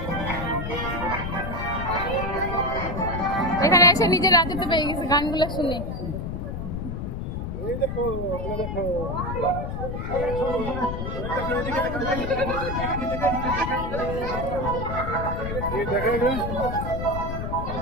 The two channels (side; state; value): left; noise; rumble, 4 dB below the sound